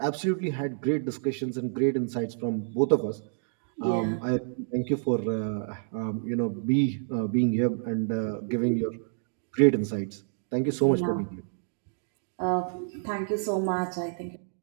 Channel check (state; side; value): silent; left; digital silence